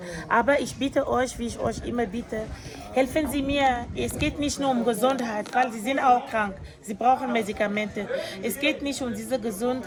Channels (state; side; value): identical; both; correlation 1.00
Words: Aber ich bitte euch, wie ich euch immer bitte, helfen Sie mir. Es geht nicht nur um Gesundheit, weil Sie sind auch krank. Sie brauchen Medikamente. Es geht nicht um diese